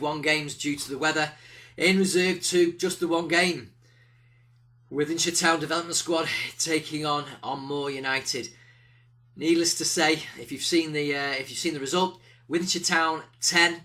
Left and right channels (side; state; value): both; identical; correlation 1.00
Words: 1 games due to the weather. In Reserve 2, just the one game. Wythenshawe Town Development Squad taking on Moor United. Needless to say, if you've seen the result, Wythenshawe Town 10,